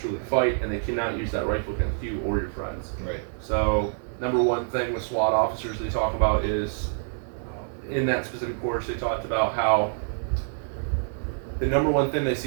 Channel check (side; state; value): left; silent; digital silence